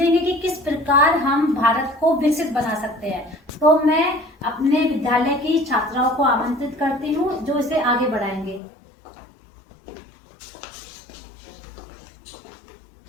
कि किस प्रकार हम भारत को विकसित बना सकते हैं। तो मैं अपने विद्यालय की छात्राओं को आमंत्रित करती हूँ जो इसे आगे बढ़ाएंगे।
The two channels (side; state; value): right; drops out; at 8.6 s